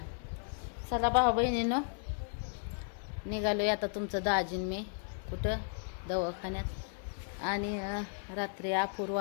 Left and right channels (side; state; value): right; silent; 55 dB below the other